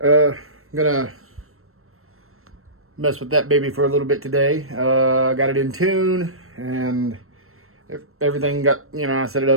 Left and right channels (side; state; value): left; late; 0.62 ms